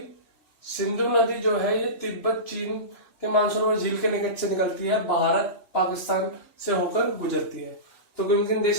सिंधु नदी जो है ये तिब्बत चीन के मानसरोवर झील के निकट से निकलती है, भारत पाकिस्तान से होकर गुजरती है। तो किन किन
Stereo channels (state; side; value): late; right; 3.1 ms